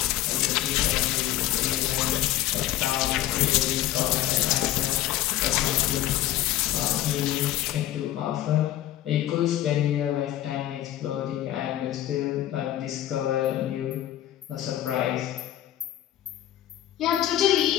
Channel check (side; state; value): right; quieter; 13.6 dB